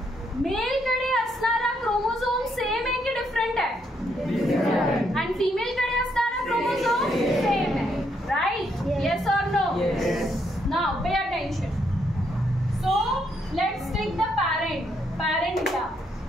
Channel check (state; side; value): normal; both; correlation 0.75